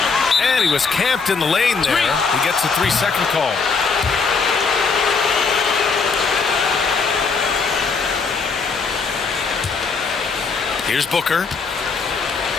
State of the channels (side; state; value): right; quieter; 4.9 dB